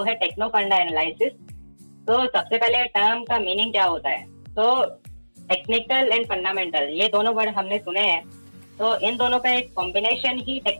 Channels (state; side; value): inverted; both; correlation -1.00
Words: है टेक्नो फंडा एनालिसिस। तो सबसे पहले टर्म का मीनिंग क्या होता है। तो टेक्निकल एंड फंडामेंटल ये दोनों वर्ड हमने सुने हैं। तो इन दोनों का एक कॉम्बिनेशन ही